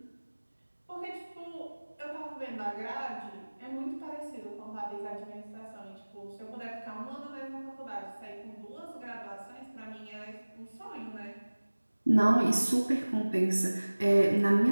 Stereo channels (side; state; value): both; inverted; correlation -1.00